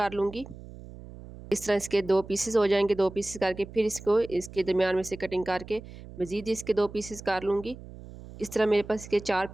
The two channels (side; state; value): right; noise; hum, 16 dB below the sound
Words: लूँगी। इस तरह इसके 2 पीसेस हो जाएंगे। 2 पीसेस करके फिर इसको इसके दरमियान में से कटिंग करके मज़ीद इसके 2 पीसेस कर लूँगी। इस तरह मेरे पास इसके 4